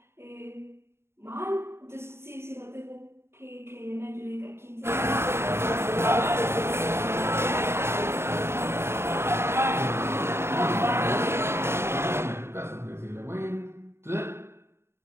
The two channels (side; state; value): left; late; 0.12 ms